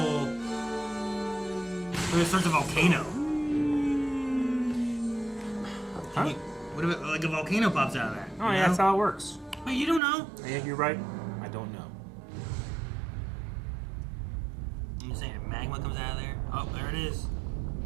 So it starts a volcano. Huh? What if it, like a volcano pops out of that? Oh, you yeah, know? that's how it works. Wait, you don't know? Yeah, you're right. I don't know. I'm just saying, if magma comes out of there. Oh, there it is.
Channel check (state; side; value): drops out; left; at 10.0 s